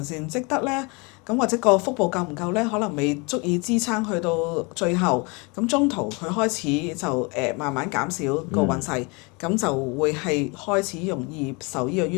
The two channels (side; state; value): right; quieter; 29.3 dB